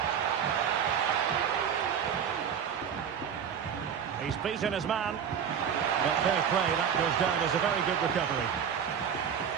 He's beaten his man. But fair play, that goes down as a very good recovery.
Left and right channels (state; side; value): quieter; left; 7.9 dB